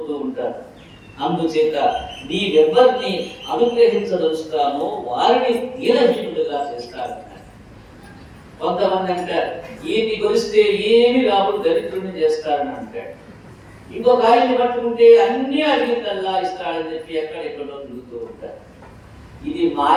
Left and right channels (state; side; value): identical; both; correlation 1.00